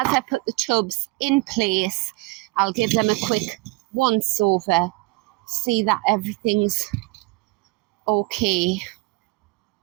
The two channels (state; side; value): quieter; left; 23.0 dB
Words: I put the tubs in place, I'll give them a quick once over, see that everything's okay.